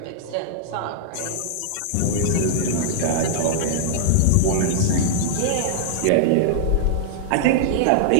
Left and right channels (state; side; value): different; both; correlation -0.01